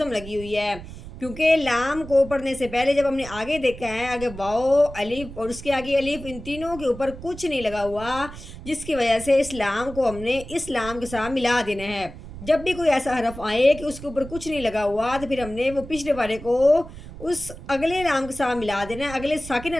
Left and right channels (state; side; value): noise; right; rumble, 14 dB below the sound